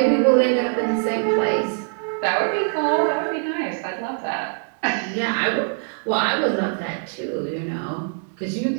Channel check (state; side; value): silent; left; 64 dB below the other